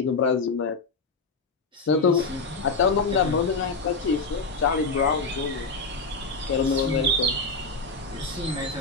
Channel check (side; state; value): right; quieter; 3.9 dB